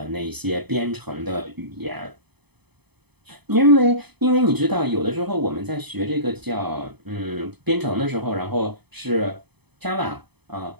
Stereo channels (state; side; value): late; left; 0.98 ms